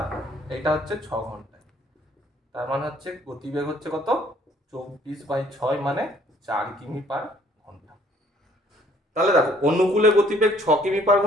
এটা হচ্ছে 6 ঘন্টায়। তার মানে হচ্ছে গতিবেগ হচ্ছে কত? 24/6 মানে 4 কিমি পার ঘন্টা। তাহলে দেখো অনুকূলে গতিবেগ 6 কিমি পার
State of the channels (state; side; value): normal; both; correlation 0.61